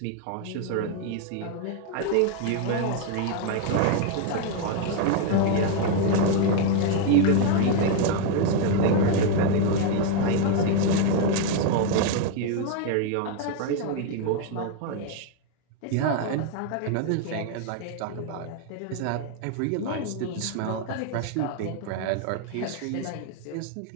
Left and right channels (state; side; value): different; both; correlation 0.01